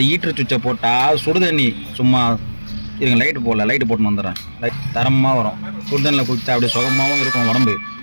ஈட்டர் சுவிட்சை போட்டால் சுடுதண்ணி சும்மா இருங்க லைட்டு போட்டுன்னு வந்துடுறேன். தரமாக வரும். சுடுதண்ணில் குளிச்சா அப்படியே சுகமாகவும் இருக்கும் உடம்பு.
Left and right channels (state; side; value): inverted; both; correlation -1.00